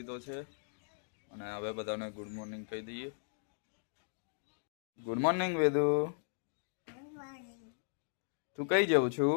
છે અને હવે બધાને ગુડ મોર્નિંગ કહી દઈએ। ગુડ મોર્નિંગ વેદુ, તું કઈ જવું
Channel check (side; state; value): right; silent; digital silence